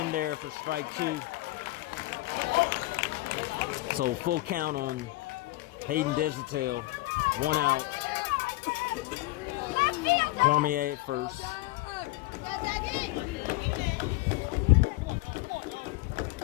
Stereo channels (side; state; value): right; quieter; 19.6 dB